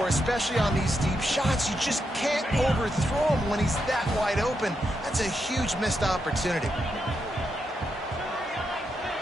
especially on these deep shots. You just can't overthrow him when he's that wide open. That's a huge missed opportunity.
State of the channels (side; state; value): both; normal; correlation 0.83